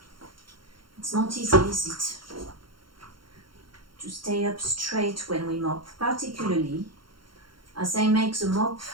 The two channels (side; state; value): left; late; 0.73 ms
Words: It's not easy, is it? To stay up straight when we mop, particularly as I make the mop